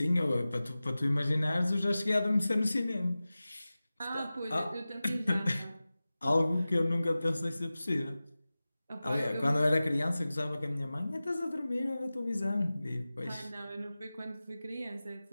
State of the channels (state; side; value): inverted; both; correlation -0.96